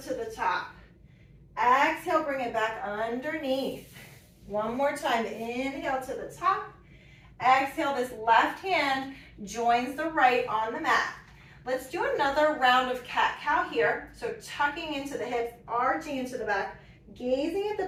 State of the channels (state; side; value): identical; both; correlation 1.00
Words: to the top. Exhale, bring it back underneath. One more time. Inhale to the top. Exhale, this left hand joins the right on the mat. Let's do another round of cat-cow here. So tucking into the hips, arching into the back, gazing at the